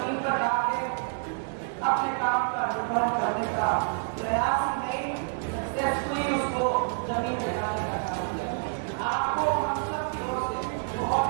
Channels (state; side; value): silent; left; 59 dB below the other